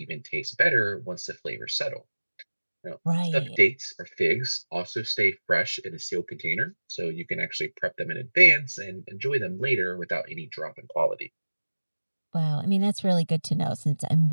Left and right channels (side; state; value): both; inverted; correlation -1.00